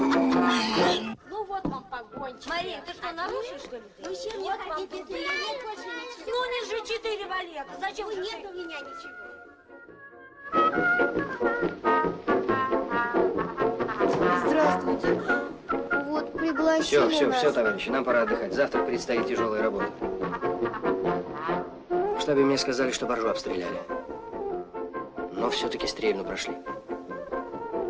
Ну вот вам погончик. Мария, ты что, нарушишь, что ли? Вы чем не хотите, если нет больше ничего? Ну, не же 4 валета. Зачем? Ну, нет у меня ничего. Здравствуйте. Вот пригласили Все, товарищи, нам пора отдыхать. Завтра предстоит тяжелая работа. В штабе мне сказали, что Боржу обстреляли. Но все-таки стрельну прошли.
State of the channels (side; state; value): both; identical; correlation 1.00